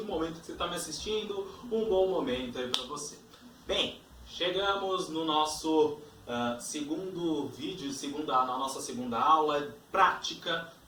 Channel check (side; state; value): both; identical; correlation 1.00